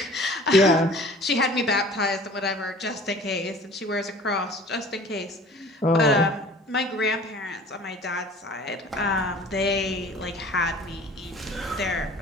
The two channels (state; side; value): normal; both; correlation 0.47